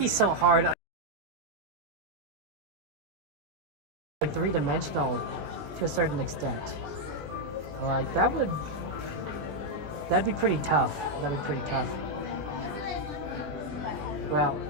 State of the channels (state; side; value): late; left; 20 ms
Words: so hard. Like three-dimensional to a certain extent. Like that'd be pretty tough. That'd be pretty tough. Well,